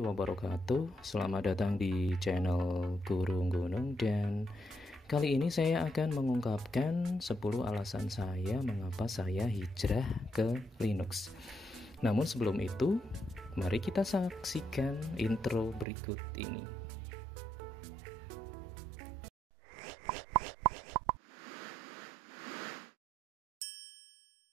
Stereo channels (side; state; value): left; drops out; at 15.9 s